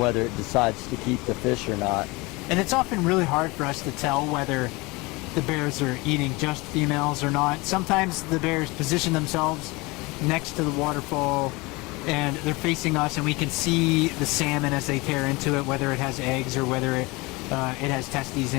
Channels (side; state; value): right; quieter; 24.3 dB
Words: it decides to keep the fish or not. And it's often really hard for us to tell whether the bears are eating just females or not. Sometimes the bears position themselves next to the waterfall and they're facing us, and we can see the salmon as they tear into it, whether it has eggs or whether it has testes